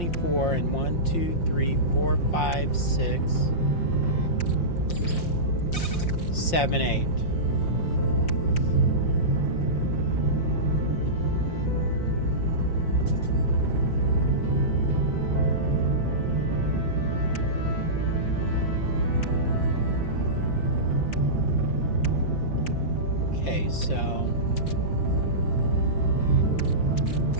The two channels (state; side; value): late; right; 5.7 ms